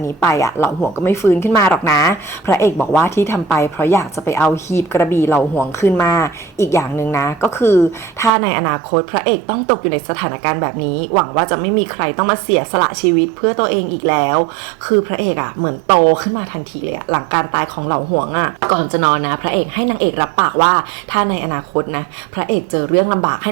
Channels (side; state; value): left; drops out; at 8.3 s